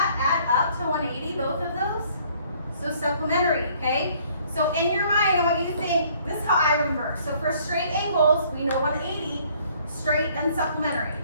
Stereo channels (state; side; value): inverted; both; correlation -0.60